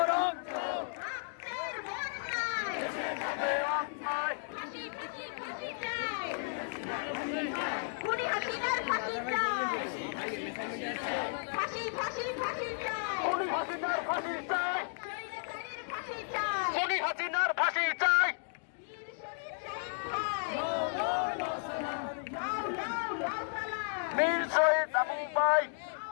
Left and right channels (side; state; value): right; silent; digital silence